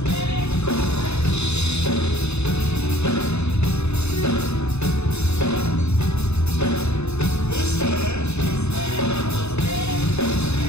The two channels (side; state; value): right; late; 0.81 ms